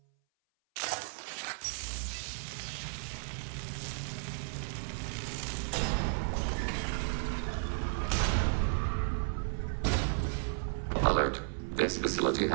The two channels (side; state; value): left; silent; 55 dB below the other